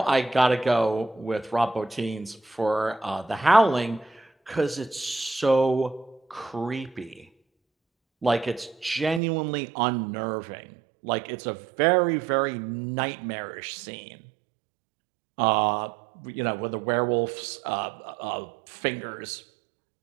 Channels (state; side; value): drops out; left; at 9.2 s